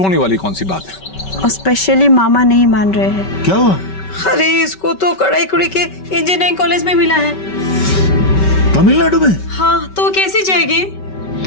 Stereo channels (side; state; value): right; late; 5.2 ms